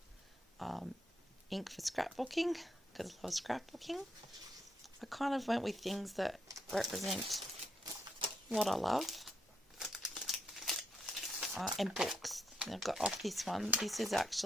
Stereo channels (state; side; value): normal; both; correlation 0.77